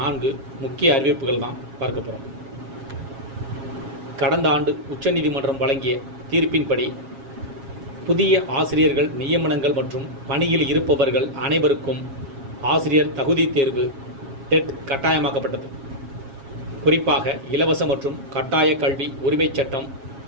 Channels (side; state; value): left; late; 7.3 ms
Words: 4 முக்கிய அறிவிப்புகள் தான் பார்க்க போகிறோம். கடந்த ஆண்டு உச்சநீதிமன்றம் வழங்கிய தீர்ப்பின்படி புதிய ஆசிரியர்கள் நியமனங்கள் மற்றும் பணியில் இருப்பவர்கள் அனைவருக்கும் ஆசிரியர் தகுதி தேர்வு டெட் கட்டாயமாக்கப்பட்டது. குறிப்பாக இலவச மற்றும் கட்டாய கல்வி உரிமைச் சட்டம்